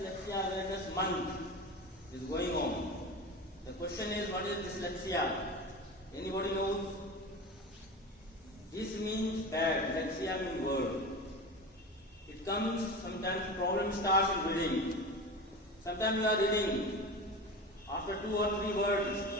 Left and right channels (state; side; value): normal; both; correlation 0.29